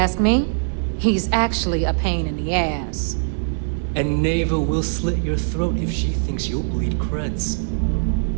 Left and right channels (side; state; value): left; silent; digital silence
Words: me, he's actually a pain in the ass. And Neva will slit your throat if she thinks you'll bleed creds.